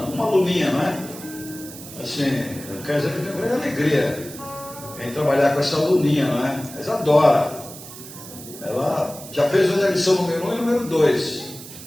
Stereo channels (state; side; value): noise; right; hiss, 15 dB below the sound